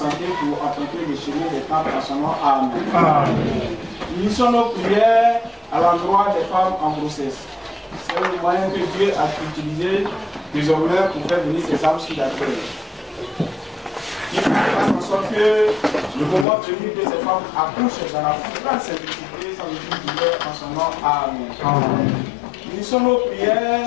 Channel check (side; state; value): right; drops out; at 16.4 s